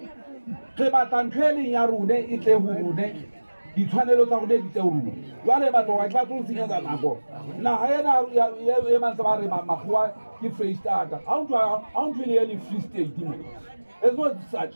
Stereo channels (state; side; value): inverted; both; correlation -1.00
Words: batla ntho e leng ya rone e tle ho rone ditshwanelo tsa rone di tle ho rone jwale batho ga ba tlo senyetsa nako naha ena e mantse ba re makgowa ke Freistata ha o ntho le Free State mo it's not such